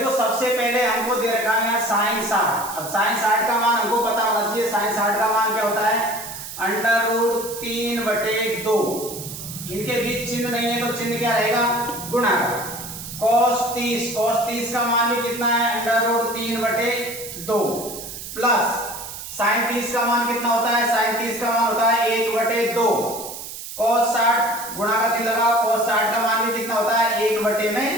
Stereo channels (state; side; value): noise; right; hiss, 10 dB below the sound